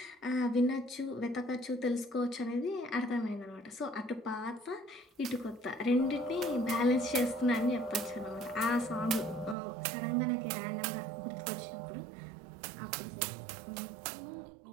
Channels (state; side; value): drops out; left; at 9.6 s